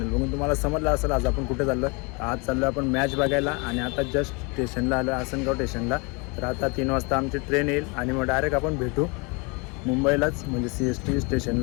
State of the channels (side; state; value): right; quieter; 29.9 dB